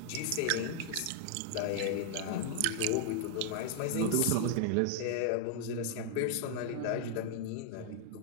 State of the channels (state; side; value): different; both; correlation 0.00